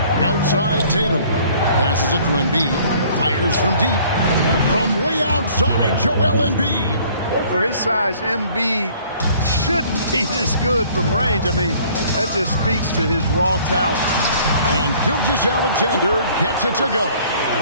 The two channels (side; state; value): both; inverted; correlation -0.55